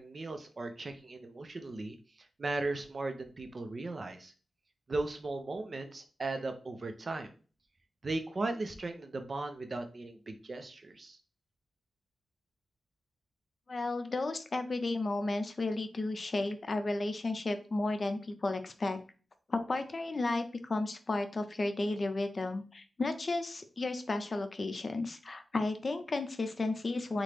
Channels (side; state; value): both; normal; correlation 0.93